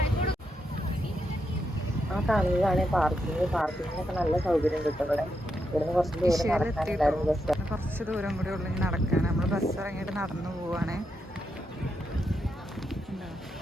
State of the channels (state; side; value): normal; both; correlation 0.83